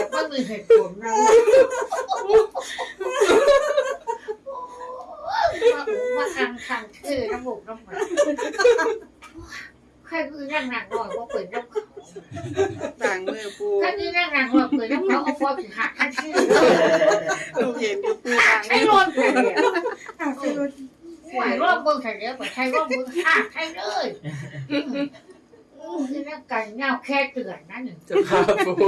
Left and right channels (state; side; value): identical; both; correlation 1.00